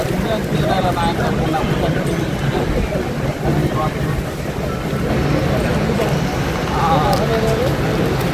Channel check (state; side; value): identical; both; correlation 1.00